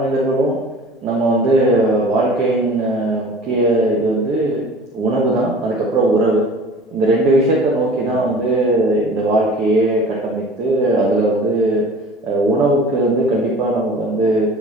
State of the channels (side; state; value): both; normal; correlation 0.43